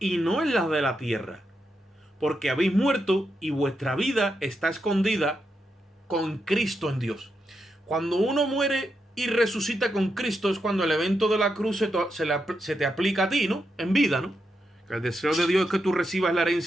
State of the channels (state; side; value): normal; both; correlation 0.84